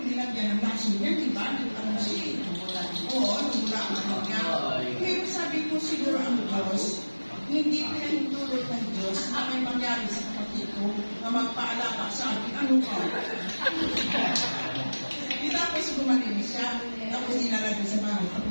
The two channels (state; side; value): inverted; both; correlation -1.00